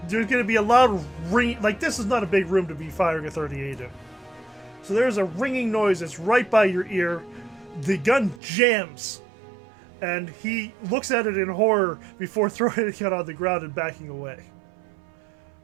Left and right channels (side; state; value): left; drops out; at 8.4 s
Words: gonna be a loud ring. Like, this is not a big room to be firing a 38 in. So there's a ringing noise that's right by your ear. The gun jams, and he looks at it in horror before throwing it on the ground and backing away.